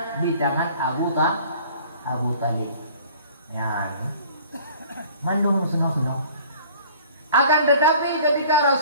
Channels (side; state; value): both; inverted; correlation -0.50